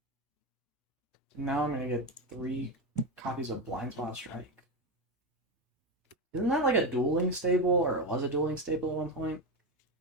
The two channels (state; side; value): normal; both; correlation 0.14